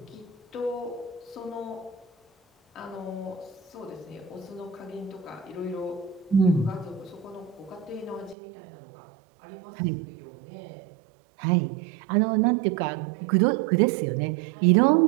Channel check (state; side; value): drops out; left; at 8.3 s